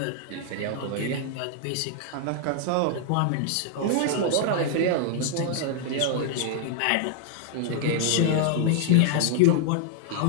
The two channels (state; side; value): different; both; correlation -0.01